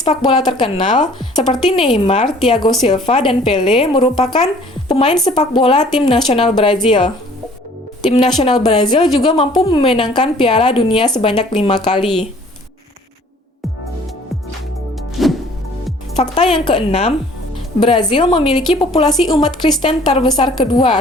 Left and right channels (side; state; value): both; normal; correlation 0.54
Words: bola terkenal, seperti Neymar, Thiago Silva, dan Pelé, merupakan pemain sepak bola tim nasional Brazil. Tim nasional Brazil juga mampu memenangkan Piala Dunia sebanyak 5 kali. Fakta yang keenam, Brazil memiliki populasi umat Kristen terbesar kedua